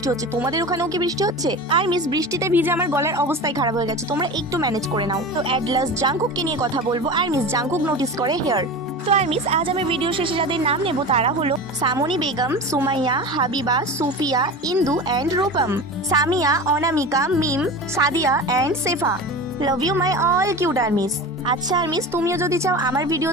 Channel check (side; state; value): both; normal; correlation 0.31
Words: হচ্ছে, তোমাদের ওখানেও কি বৃষ্টি হচ্ছে? আর মিস, বৃষ্টিতে ভিজে আমার গলার অবস্থায় খারাপ হয়ে গেছে, তোমরা একটু ম্যানেজ করে নাও। তো অ্যাট লাস্ট জাঙ্কুককে নিয়ে কথা বলবো। আর মিস, জাঙ্কুক নোটিস করে হেয়ার। তো আর মিস, আজ আমি ভিডিও শেষে যাদের নাম নেব তারা হলো Samni Begum, Sumaiya, Habiba, Sufiya, Indu and Rupam, Samia, Anamika, Mim, Sadia and Sefa. Love you my all cute armies. আচ্ছা আর্মিস, তুমিও যদি চাও আমার